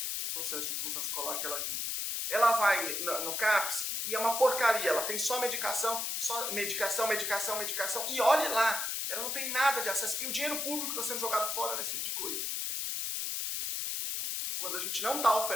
o processo de inclusão escolar que ela vive. Ela vai no CAPS e é uma porcaria, ela tem só medicação, e olhe lá, ela não tem nada de acesso. E o dinheiro público está sendo jogado fora nesse tipo de coisa. Quando a gente não está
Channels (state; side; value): noise; left; hiss, 1 dB below the sound